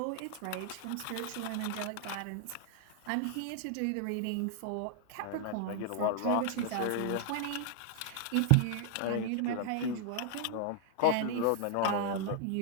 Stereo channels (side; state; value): both; different; correlation 0.00